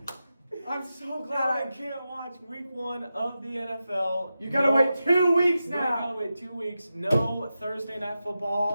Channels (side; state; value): both; inverted; correlation -0.91